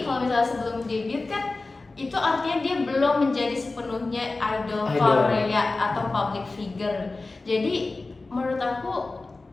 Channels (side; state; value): right; quieter; 3.4 dB